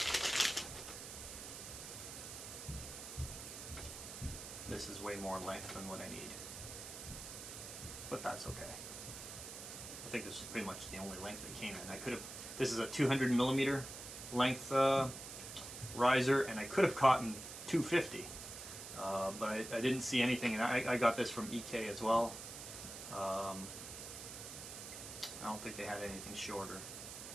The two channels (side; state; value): right; noise; hiss, 10 dB below the sound